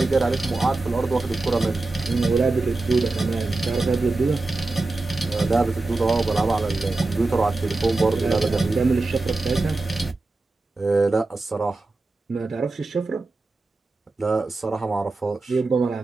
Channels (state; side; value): quieter; left; 3.3 dB